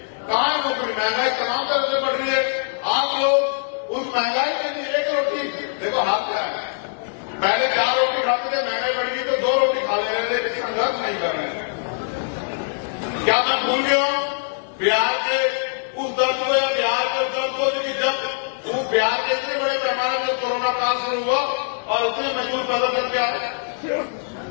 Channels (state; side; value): silent; right; digital silence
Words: कहाँ नौकरी? महंगाई तमाम तरह से बढ़ रही है। आप लोग उस महंगाई के लिए 1 रोटी, देखो हाथ क्या है, पहले 4 रोटी खाते थे, महंगाई बढ़ गई तो 2 रोटी खा ले रहे थे, लेकिन संघर्ष नहीं कर रहे हैं। क्या मैं भूल गया हूं बिहार के उस दर्द को, या बिहार के उस दर्द को, जो कि जब वो बिहार के इतने बड़े पैमाने पर कोरोना काल शुरू हुआ और उतने मजदूर पैदा करके आए,